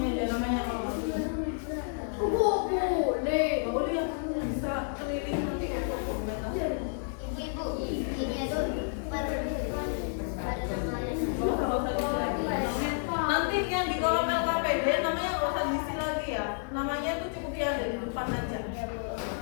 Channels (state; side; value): silent; right; digital silence